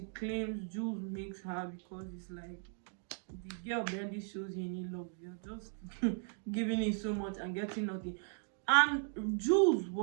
claims Jules makes her, because it's like, the girl barely shows you any love. You're just giving it so much and getting nothing. And Jules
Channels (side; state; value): left; silent; 53 dB below the other